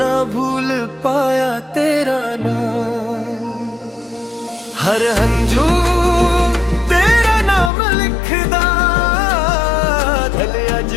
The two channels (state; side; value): drops out; right; at 7.7 s